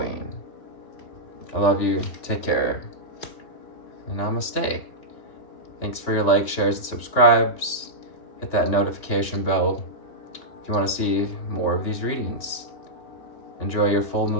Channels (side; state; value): right; late; 3.5 ms